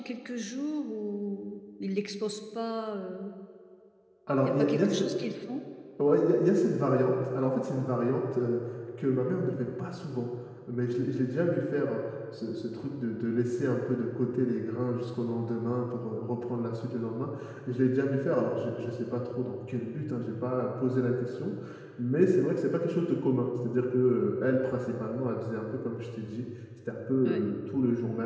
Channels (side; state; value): both; identical; correlation 1.00